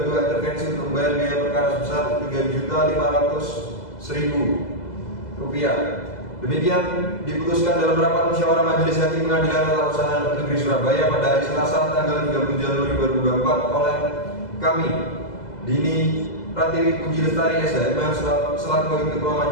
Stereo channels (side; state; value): right; late; 2.0 ms